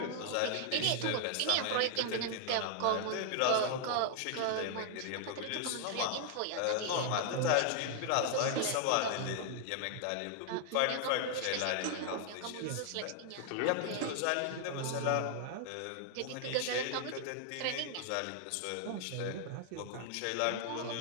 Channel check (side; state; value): both; different; correlation 0.00